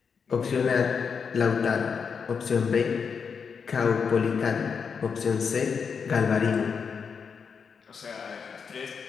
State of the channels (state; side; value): quieter; right; 6.1 dB